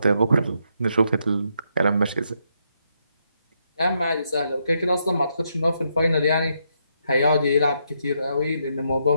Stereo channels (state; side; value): inverted; both; correlation -0.78